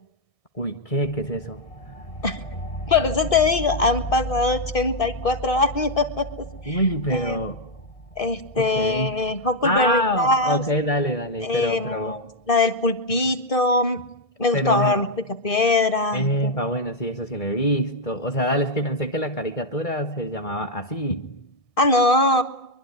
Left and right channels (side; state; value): right; late; 1.6 ms